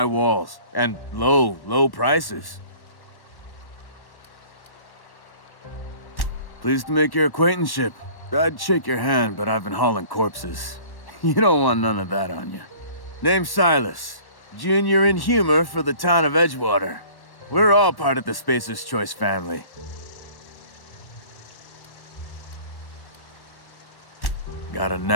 walls. And low prices. Pleased to make your acquaintanceship. I'd shake your hand, but I've been hauling corpses. You don't want none of that on you. Name's Silas. Junior in humor for the town of Edgewater. We're all part of the Spacer's Choice family. Got a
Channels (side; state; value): right; late; 1.1 ms